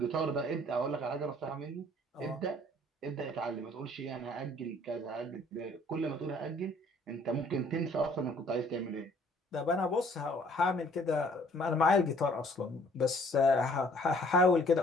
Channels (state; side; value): normal; both; correlation 0.58